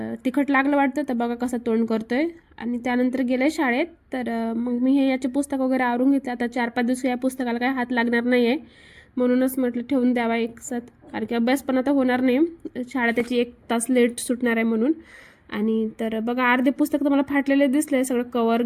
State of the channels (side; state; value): both; identical; correlation 1.00